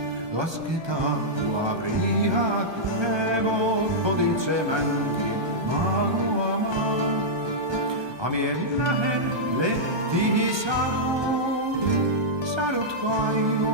Lasketaan prihat hevo, otitse mänkin maaluamaan. Amien lähelle tihi sadut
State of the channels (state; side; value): late; left; 1.2 ms